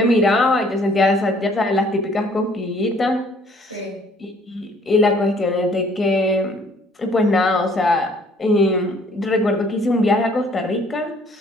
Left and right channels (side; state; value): both; normal; correlation 0.59